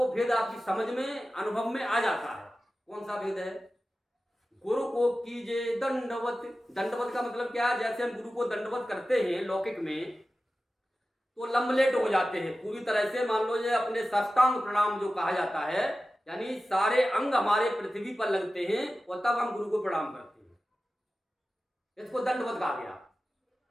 भेद आपकी समझ में अनुभव में आ जाता है। कौन सा भेद है, गुरु को कीजिए दंडवत। दंडवत का मतलब क्या है, जैसे हम गुरु को दंडवत करते हैं लौकिक में तो लंबलेट हो जाते हैं पूरी तरह से, मान लो ये अपने साष्टांग प्रणाम जो कहा जाता है, यानी सारे अंग हमारे पृथ्वी पर लगते हैं और तब हम गुरु को प्रणाम करते हैं, इसको दंडवत कहा गया।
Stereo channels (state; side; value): normal; both; correlation 0.94